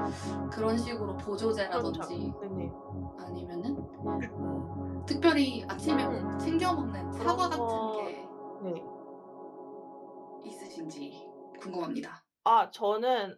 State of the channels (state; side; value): identical; both; correlation 1.00